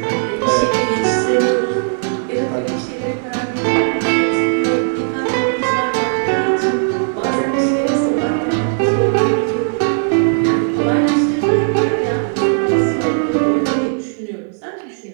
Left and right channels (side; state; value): left; silent; 68 dB below the other